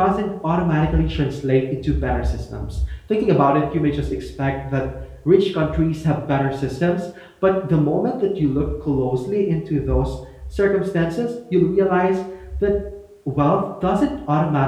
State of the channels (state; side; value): identical; both; correlation 1.00